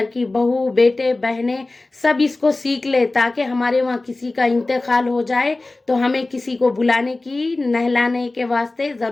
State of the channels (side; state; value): right; quieter; 3.1 dB